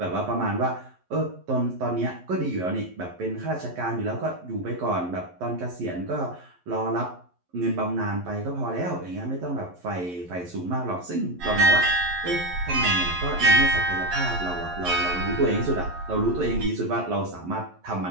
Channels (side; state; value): left; late; 11 ms